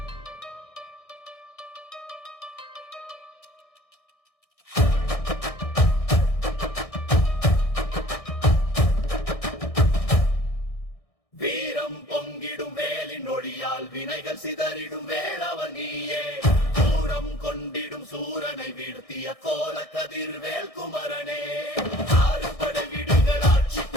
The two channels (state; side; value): late; right; 1.6 ms